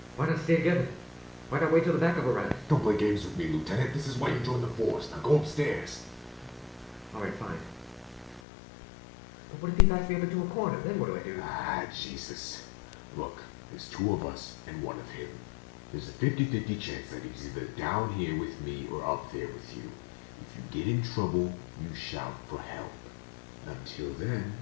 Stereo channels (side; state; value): right; drops out; at 8.4 s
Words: Why not stay together? Why not wait till the backup arrives? Don't play games with me, Lieutenant. This is why you joined the force. Now go upstairs. Alright, fine. But what if he backs me up into a corner? Then what do I do? Ah, Jesus. Look, there's two of us and one of him. There's a 50-50 chance that he's either down here with me or up there with you. If you get in trouble, you shout for help. Until then,